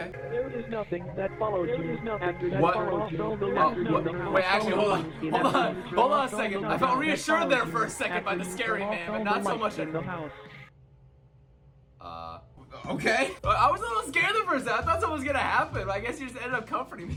There is nothing that follows you. There is nothing after that What? follows all the lights in the house. Wait, actually, hold on a second. I felt reassured there for a second by the scary man, but not so much in the house. Okay. I was a little scared the first time. I thought something was gonna happen, but I guess you just ended up comforting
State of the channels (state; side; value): identical; both; correlation 1.00